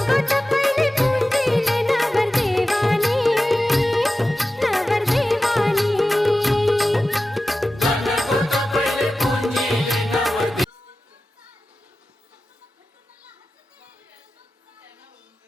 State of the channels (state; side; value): normal; both; correlation 0.94